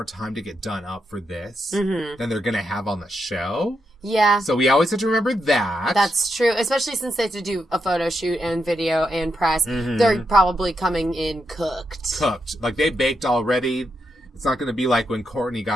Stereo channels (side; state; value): both; normal; correlation 0.83